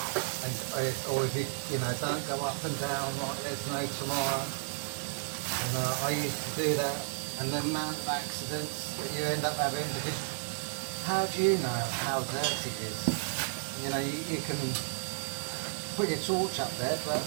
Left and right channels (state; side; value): silent; left; 56 dB below the other